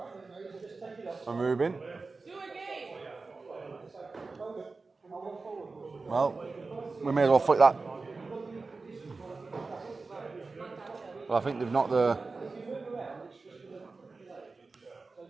and Ruben. Well, we may as well flick that. Well, I think they've knocked the...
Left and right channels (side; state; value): left; quieter; 3.9 dB